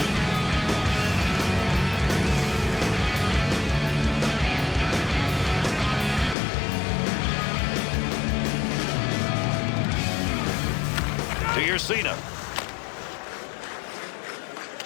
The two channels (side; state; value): right; drops out; at 6.4 s